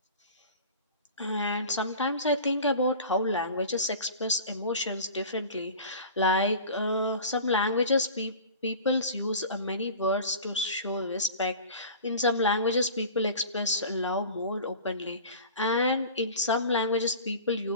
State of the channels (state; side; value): inverted; both; correlation -0.38